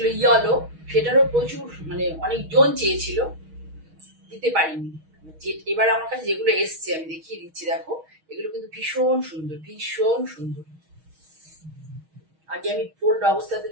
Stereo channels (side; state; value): left; late; 6.3 ms